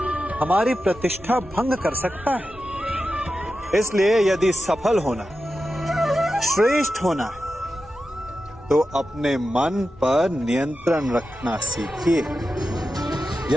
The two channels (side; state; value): both; normal; correlation 0.91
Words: हमारी प्रतिष्ठा भंग कर सकता है। इसलिए यदि सफल होना, श्रेष्ठ होना है, तो अपने मन पर नियंत्रण रखना सीखिए।